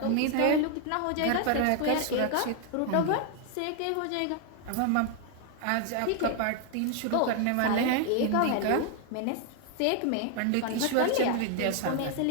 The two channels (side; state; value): both; different; correlation 0.00